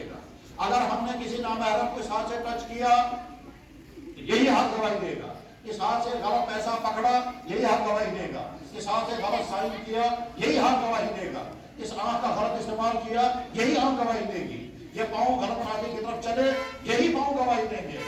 گا. اگر ہم نے کسی نامحرم کو اس ہاتھ سے ٹچ کیا یہی ہاتھ گواہی دے گا. اس ہاتھ سے غلط پیسہ پکڑا یہی ہاتھ گواہی دے گا. اس ہاتھ سے غلط سائن کیا یہی ہاتھ گواہی دے گا. اس آنکھ کا غلط استعمال کیا یہی آنکھ گواہی دے گی. یہ پاؤں غلط راستے کی طرف چلے یہی پاؤں گواہی دیں گے.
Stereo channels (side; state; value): both; identical; correlation 1.00